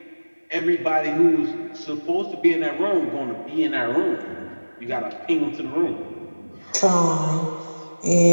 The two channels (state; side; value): inverted; both; correlation -1.00